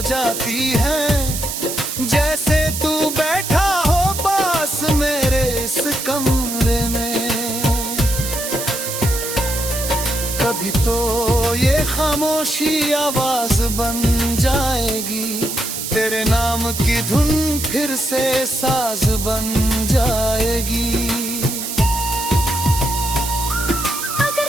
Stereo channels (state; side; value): noise; right; hiss, 5 dB below the sound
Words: जाती हैं, जैसे तू बैठा हो पास मेरे इस कमरे में। कभी तो ये खामोशी आवाज बन जाएगी, तेरे नाम की धुन फिर से साज बन जाएगी। अगर